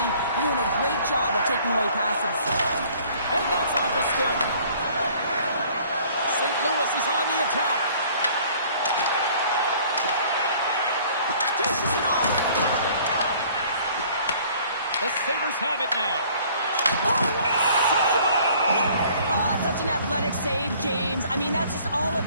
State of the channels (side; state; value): both; inverted; correlation -0.55